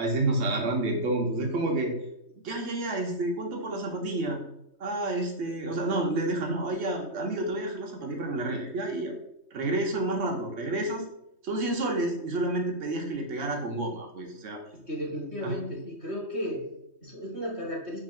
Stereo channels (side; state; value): left; late; 3.2 ms